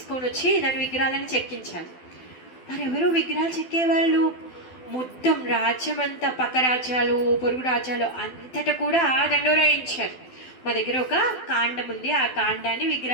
వచ్చి దాని విగ్రహాలను చెక్కించాలి. మరి ఎవరు విగ్రహాలు చెక్కేవాళ్ళు? మొత్తం రాజ్యం అంతా, పక్క రాజ్యాలు, పొరుగు రాజ్యాలు అంతటా కూడా దండోరాయించారు. మా దగ్గర ఒక కాండం ఉంది, ఆ కాండాన్ని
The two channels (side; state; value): right; late; 12 ms